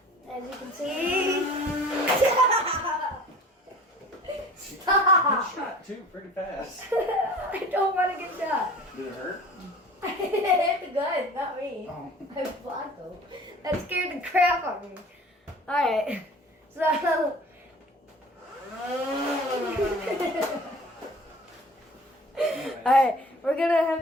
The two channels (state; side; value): normal; both; correlation 0.45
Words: As you can see. Stop! Shot too pretty fast. I don't want to get shot. Did it hurt? I hit the gun, not me. Oh. I blocked him. That scared the crap out of me. Alright. So alright, we're gonna